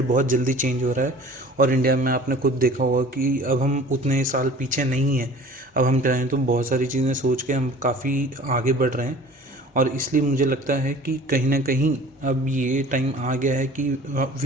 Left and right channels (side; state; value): both; normal; correlation 0.45